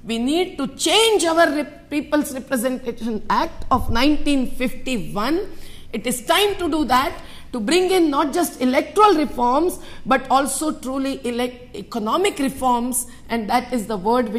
We need to change our People's Representation Act of 1951. It is time to do that, to bring in not just electoral reforms, but also truly economic reforms, and that is the word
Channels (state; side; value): identical; both; correlation 1.00